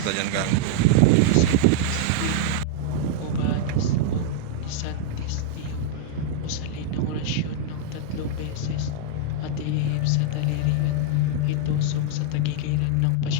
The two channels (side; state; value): both; different; correlation -0.01